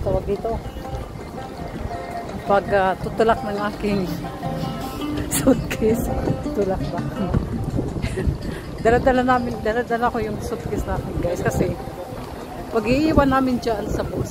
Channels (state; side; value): identical; both; correlation 1.00